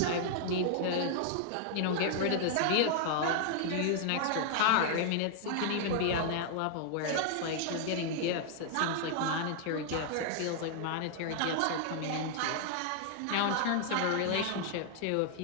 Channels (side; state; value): both; different; correlation 0.00